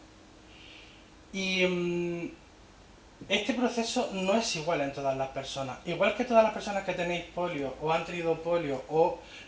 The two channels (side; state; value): both; identical; correlation 1.00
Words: Y este proceso no es igual en todas las personas. Igual que todas las personas que tenéis polio o han tenido polio o